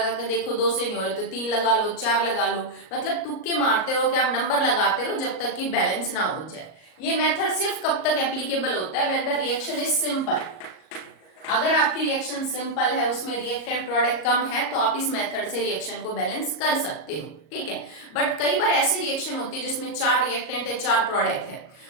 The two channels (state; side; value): late; right; 38 ms